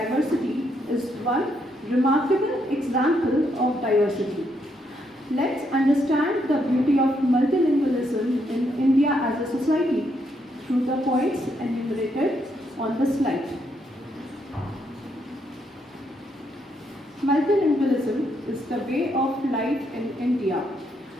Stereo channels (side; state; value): both; normal; correlation 0.76